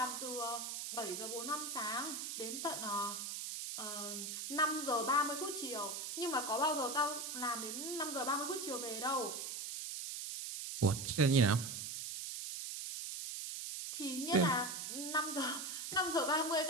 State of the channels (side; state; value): right; noise; hiss, 5 dB below the sound